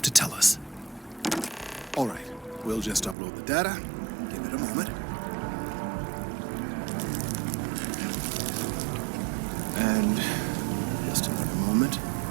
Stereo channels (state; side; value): drops out; left; at 3.2 s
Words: to tell us. All right, we'll just upload the data. Give it a moment. And just another moment.